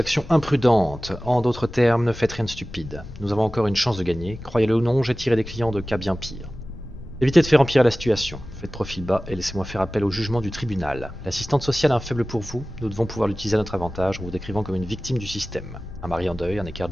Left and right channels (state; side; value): noise; left; rumble, 17 dB below the sound